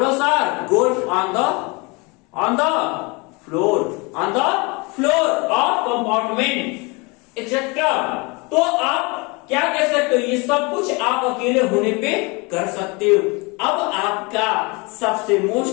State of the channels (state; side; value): quieter; right; 28.0 dB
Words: or golf on the floor of compartment etcetera. तो आप क्या कह सकते हो? ये सब कुछ आप अकेले होने पे कर सकते हो। अब आपका सबसे